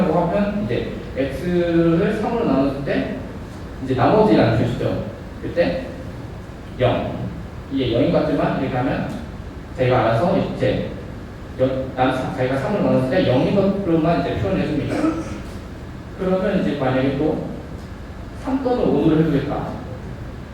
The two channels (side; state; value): both; identical; correlation 1.00